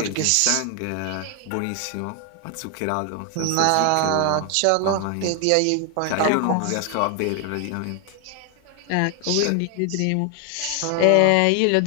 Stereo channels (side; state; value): both; different; correlation 0.00